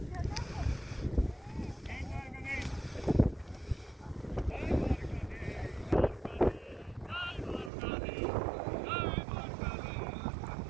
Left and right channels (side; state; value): left; drops out; at 7.7 s